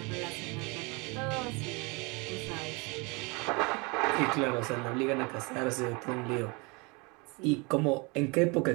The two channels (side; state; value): left; quieter; 28.9 dB